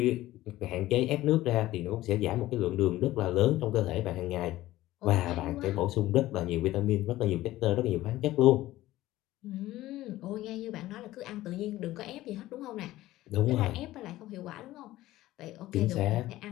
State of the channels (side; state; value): right; quieter; 16.0 dB